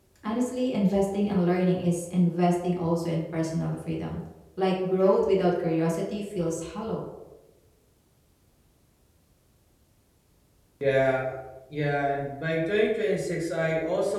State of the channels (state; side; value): identical; both; correlation 1.00